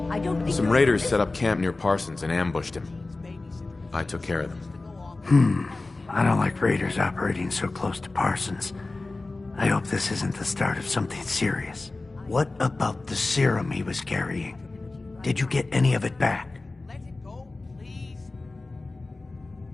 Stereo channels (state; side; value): quieter; right; 3.3 dB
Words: I don't think Some you're- raiders set up camp near Parsons and ambushed him. I took care of them. I don't like raiders operating so close to Parsons. I hope this isn't the start of something serious. What about the serum he was carrying? Did you get any of it back? Let it go, please.